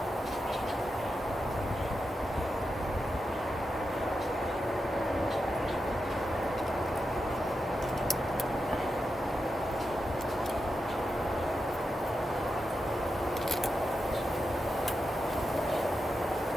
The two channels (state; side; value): normal; both; correlation 0.88